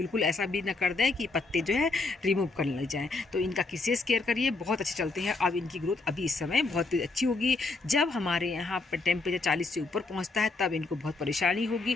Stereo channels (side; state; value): right; quieter; 3.6 dB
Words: ऐसा भी ना कर दें कि पत्ते जो है रिमूव करने लग जाएँ। तो इनका विशेष केयर करिए, बहुत अच्छे चलते हैं। अब इनकी ग्रोथ अभी इस समय बहुत अच्छी होगी। जब हमारे यहाँ पर टेम्परेचर 40 से ऊपर पहुँचता है तब इनको बहुत परेशानी होगी,